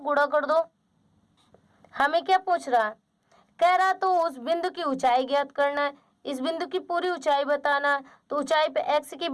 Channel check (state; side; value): identical; both; correlation 1.00